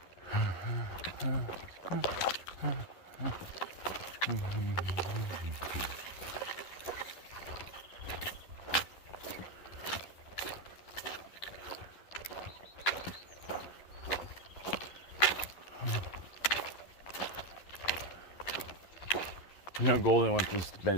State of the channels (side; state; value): right; late; 11 ms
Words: You know, Golden wants us to